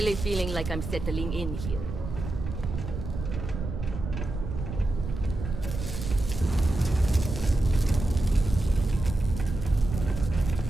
feeling like I'm settling in here.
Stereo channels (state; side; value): noise; right; rumble, 6 dB below the sound